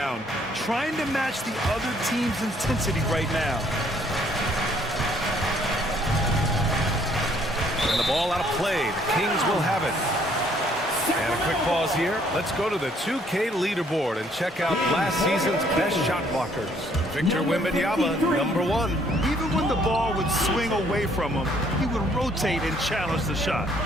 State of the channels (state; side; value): normal; both; correlation 0.64